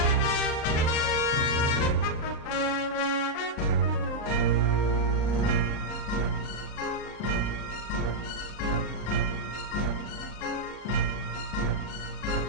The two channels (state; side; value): late; right; 39 ms